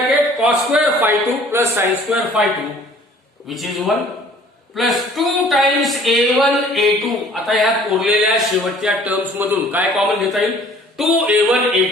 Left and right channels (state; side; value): normal; both; correlation 0.53